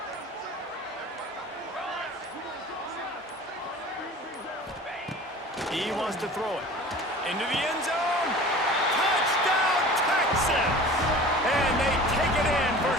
He wants to throw it into the end zone. Touchdown, Texas! And they take it in for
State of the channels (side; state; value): both; normal; correlation 0.41